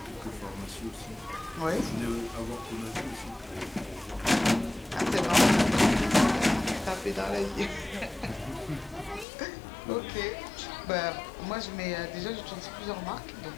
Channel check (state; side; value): drops out; right; at 9.2 s